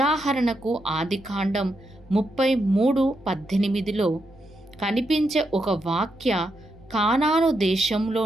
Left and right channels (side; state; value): both; normal; correlation 0.83